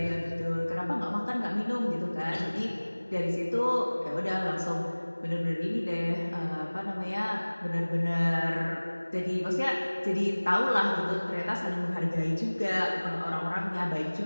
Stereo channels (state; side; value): inverted; both; correlation -1.00